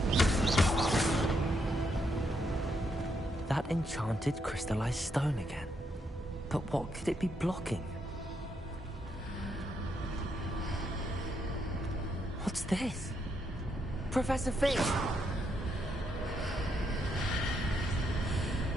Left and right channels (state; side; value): normal; both; correlation 0.77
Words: That enchanted crystallized stone again. But what could it be blocking? What's this? Professor Fish!